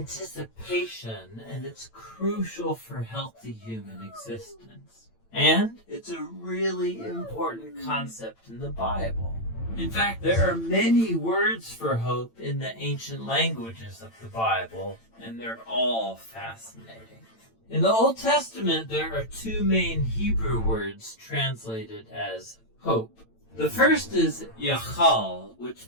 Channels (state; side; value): late; right; 8.9 ms